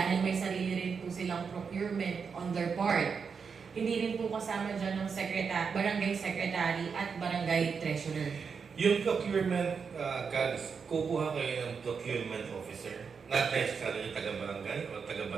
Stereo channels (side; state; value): left; quieter; 5.9 dB